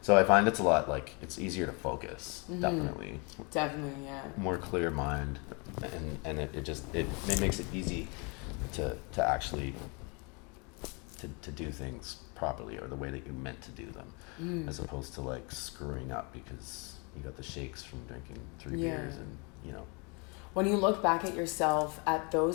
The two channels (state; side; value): quieter; right; 32.0 dB